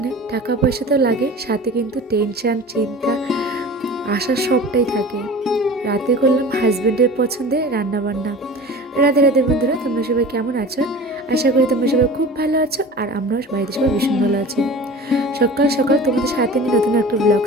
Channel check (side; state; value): both; normal; correlation 0.37